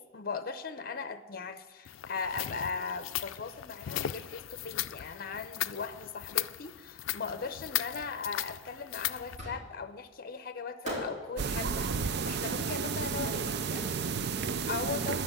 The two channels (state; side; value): normal; both; correlation 0.00